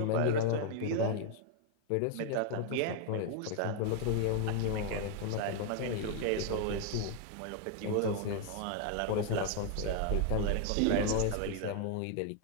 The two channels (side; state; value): both; different; correlation 0.00